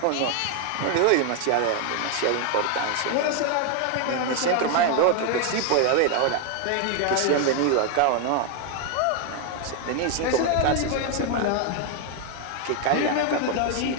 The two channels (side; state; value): both; different; correlation 0.01